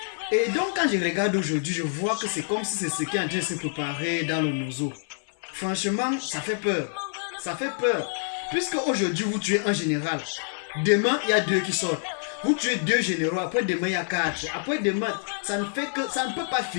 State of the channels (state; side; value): silent; right; 60 dB below the other